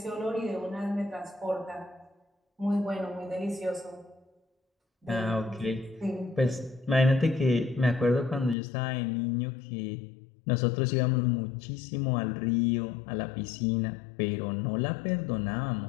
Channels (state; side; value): drops out; right; at 8.6 s